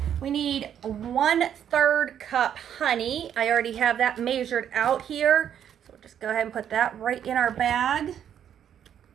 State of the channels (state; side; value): quieter; left; 9.4 dB